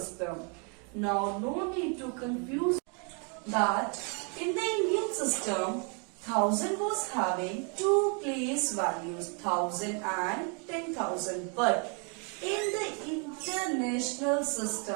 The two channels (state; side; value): quieter; left; 37.1 dB